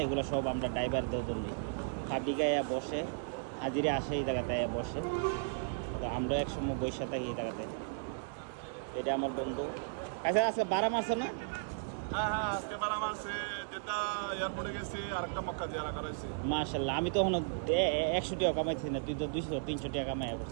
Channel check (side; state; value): left; silent; 54 dB below the other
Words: এগুলো সব আমরা ড্রাইভারদের জন্যই। ফাবিকায় বসে, হাজিরে আসে এই জায়গাতে বসে, তো আমরা এক সময় বসে থাকি এই জায়গাতে। এটা আমার বন্ধু। আচ্ছা আজকে বারা মারছে না? হ্যাঁ, আজকে বারা মারছে, যেটা এয়ারপোর্টে গেছি আরেকটা মক্কা জিয়ারা করাইছি। মাশাআল্লাহ, আমি তো এখন 100 টাকা কামাইছি না, তুই তো 200-300 টাকা কামাই